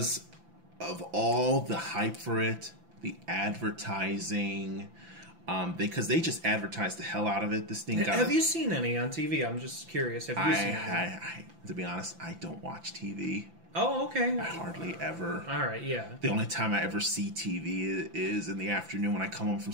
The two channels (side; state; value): left; late; 5.9 ms